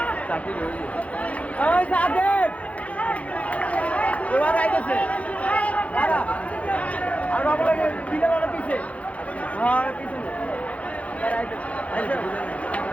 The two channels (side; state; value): right; late; 0.066 ms